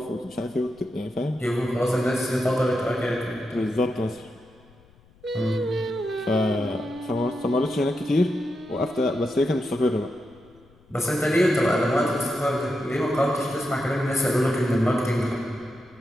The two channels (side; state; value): left; noise; rumble, 28 dB below the sound